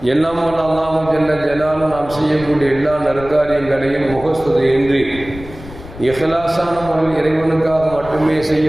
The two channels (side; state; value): left; noise; rumble, 16 dB below the sound